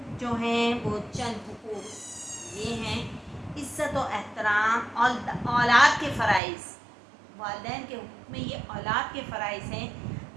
جو ہیں وہ چند حقوق یہ ہیں: عزت و احترام اور اولاد کے فرائض. والدین کے حقوق میں یہ اولاد کے فرائض ہیں:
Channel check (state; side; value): drops out; left; at 6.4 s